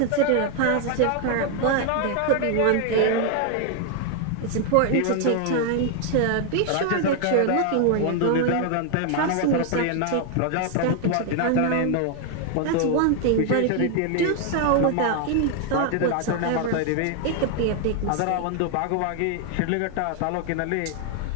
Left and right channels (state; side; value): different; both; correlation 0.00